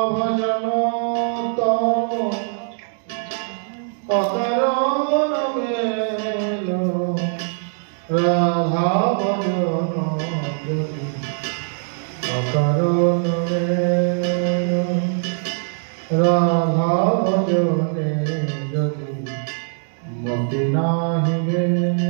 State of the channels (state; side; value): silent; left; 65 dB below the other